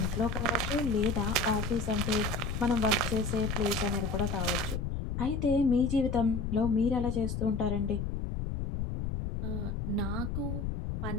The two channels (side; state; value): left; noise; rumble, 3 dB below the sound